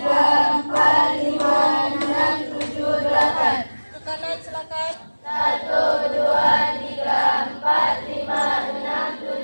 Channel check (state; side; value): inverted; both; correlation -1.00